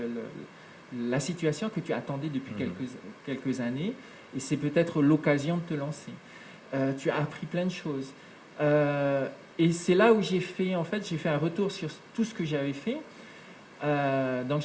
la situation que tu attendais depuis quelques années, et c'est peut-être l'occasion de te lancer. Tu as appris plein de choses. Et c'est là où j'ai fait un retour sur tout ce que j'avais fait. Donc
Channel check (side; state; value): both; identical; correlation 1.00